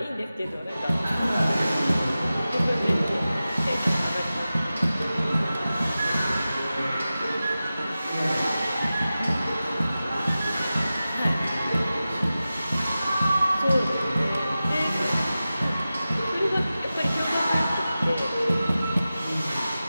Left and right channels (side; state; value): both; inverted; correlation -0.95